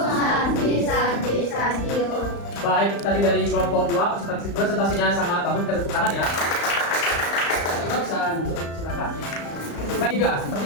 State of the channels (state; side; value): late; right; 35 ms